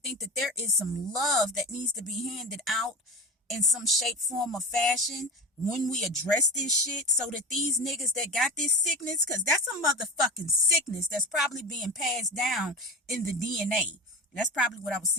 that there is some love that needs to be handed out in some shape, form, or fashion when we address this shit, so that these niggas that got this sickness, because that's a motherfucking sickness that's probably being passed down in the DNA. That's probably what I was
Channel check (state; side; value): normal; both; correlation 0.28